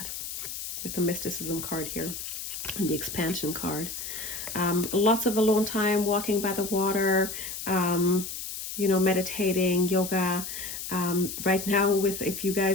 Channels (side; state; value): left; noise; hiss, 7 dB below the sound